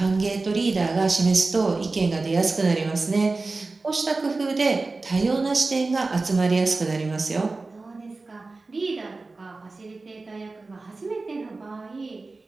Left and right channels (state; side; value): quieter; left; 3.6 dB